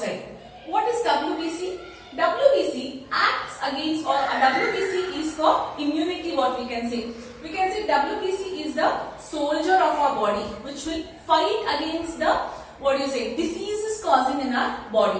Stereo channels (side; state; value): both; identical; correlation 1.00